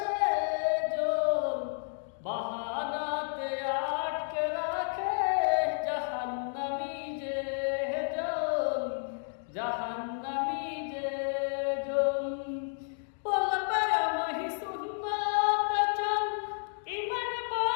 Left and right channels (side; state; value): right; silent; digital silence